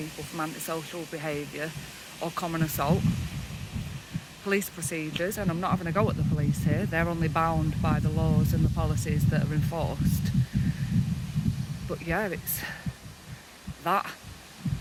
from antisocial behaviour or common assault. Police procedures, and I'm not having a go at the police here, they're only bound by the laws and the policies that are enforced. But yeah, it's that,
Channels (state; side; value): identical; both; correlation 1.00